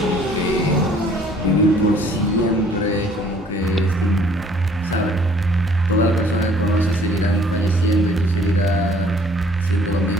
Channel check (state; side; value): normal; both; correlation 0.58